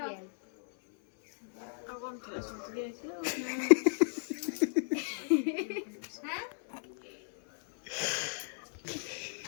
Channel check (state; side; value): silent; right; 55 dB below the other